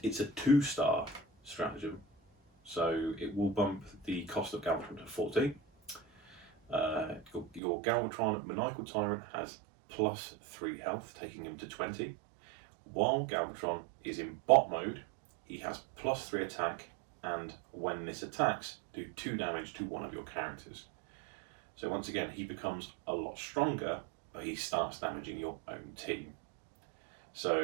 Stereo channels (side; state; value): left; drops out; at 7.6 s